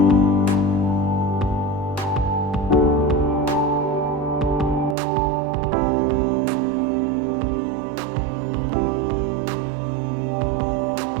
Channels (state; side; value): drops out; left; at 5.0 s